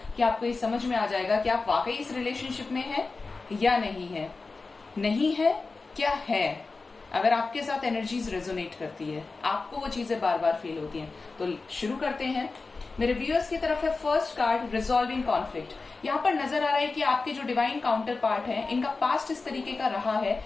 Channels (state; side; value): quieter; right; 3.9 dB